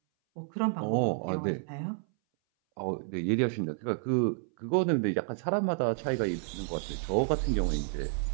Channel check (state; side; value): silent; left; 58 dB below the other